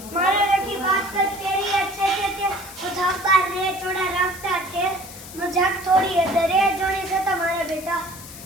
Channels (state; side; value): noise; left; hiss, 15 dB below the sound